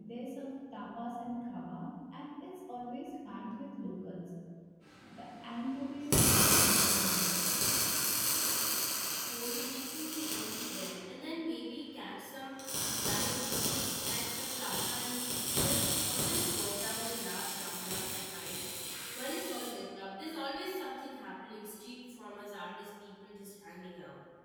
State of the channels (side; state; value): both; identical; correlation 1.00